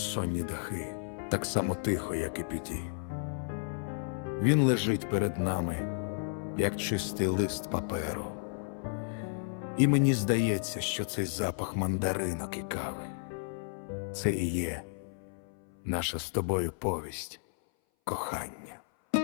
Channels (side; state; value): right; silent; 56 dB below the other